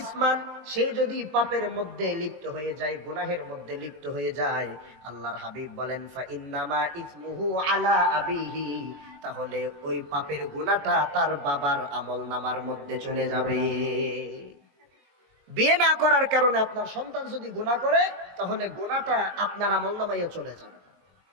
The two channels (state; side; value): late; left; 21 ms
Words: সে যদি পাপের মধ্যে লিপ্ত হয়ে যায়, গুনাহের মধ্যে লিপ্ত হয়ে যায়, আল্লাহর হাবিব বলেন ফাইন্নামা ইসমুহু আলা আবিহি, তাহলে ওই পাপের গুনাহটা তার বাবার আমলনামার মধ্যে চলে যাবে। বিয়ে না করার কারণে আপনার সন্তান যদি গুনাহ করে তাহলে গুনাহটা আপনার আমলনামায়ও চলে যাবে।